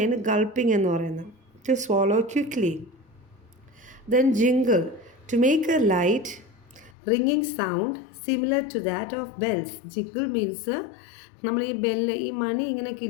ഗൾപ്പിംഗ് എന്ന് പറയുന്നത്. To swallow quickly. Then jingle, to make a light റിങ്ങിങ് sound similar to that of bells. Jingle means നമ്മൾ ഈ ഈ മണി ഇങ്ങനെ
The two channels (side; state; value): right; drops out; at 6.9 s